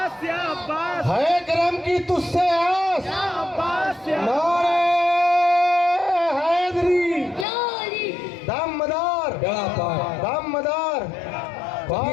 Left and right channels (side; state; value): right; drops out; at 7.5 s